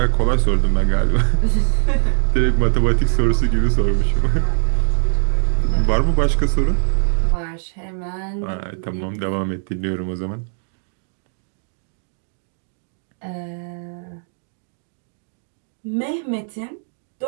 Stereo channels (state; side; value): silent; left; digital silence